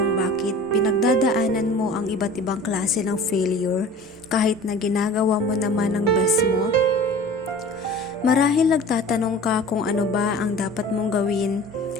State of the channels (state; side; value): normal; both; correlation 0.42